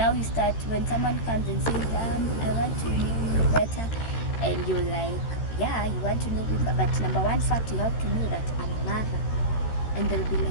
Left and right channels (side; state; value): right; late; 13 ms